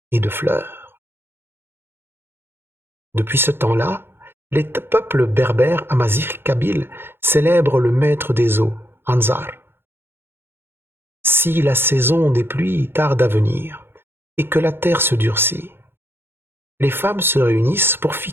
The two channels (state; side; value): late; left; 0.11 ms